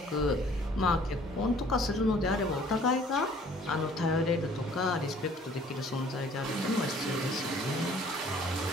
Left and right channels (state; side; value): normal; both; correlation 0.55